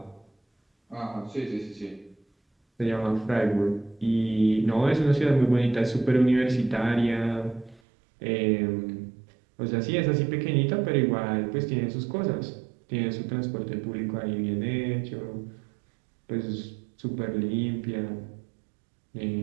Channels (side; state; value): left; drops out; at 7.8 s